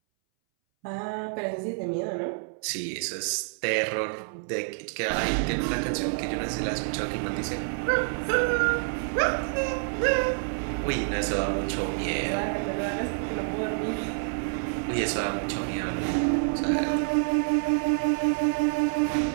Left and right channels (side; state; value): left; silent; 60 dB below the other